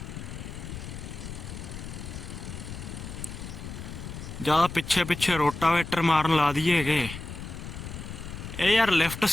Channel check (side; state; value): left; noise; rumble, 9 dB below the sound